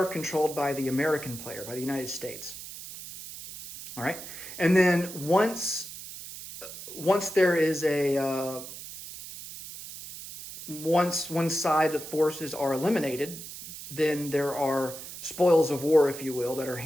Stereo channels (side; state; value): right; noise; hiss, 12 dB below the sound